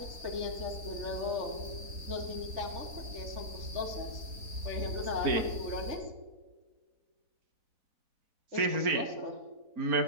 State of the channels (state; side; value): late; left; 4.0 ms